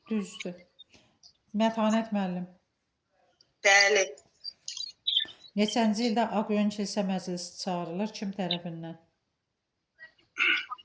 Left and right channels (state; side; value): identical; both; correlation 1.00